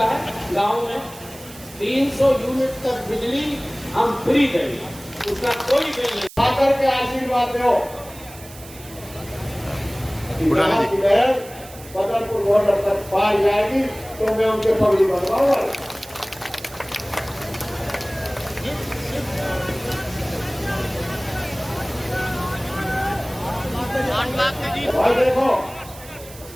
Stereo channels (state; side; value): noise; right; hiss, 18 dB below the sound